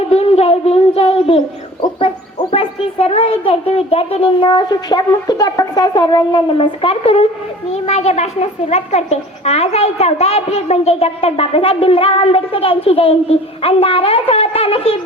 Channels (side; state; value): both; normal; correlation 0.43